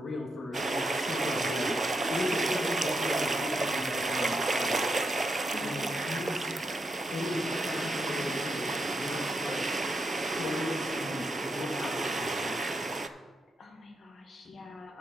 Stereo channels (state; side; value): normal; both; correlation 0.82